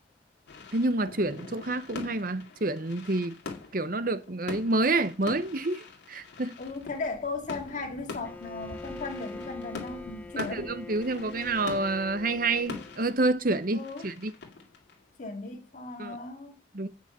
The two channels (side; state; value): both; normal; correlation 0.35